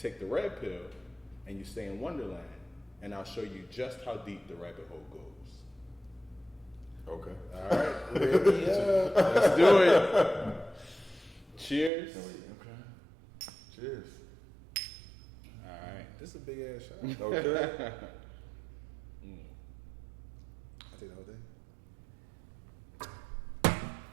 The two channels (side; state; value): left; drops out; at 11.9 s